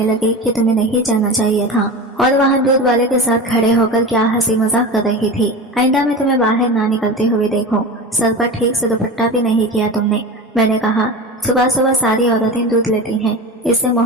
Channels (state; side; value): normal; both; correlation 0.28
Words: लगे कि तुम्हें नहीं जाना चाहिए था और वहाँ दूध वाले के साथ खड़े होकर क्या हंसी मजाक कर रही थी। आइंदा में तुम्हें बाहर ना निकलते हुए देखो। सर पर ठीक से दुपट्टा भी नहीं किया तुमने। मैंने कहा, सुबह सुबह सारी औरतें दूध लेती हैं। इससे